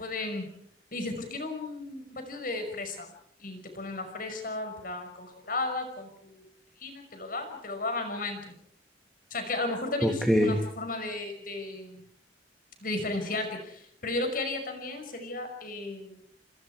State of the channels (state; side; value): normal; both; correlation 0.37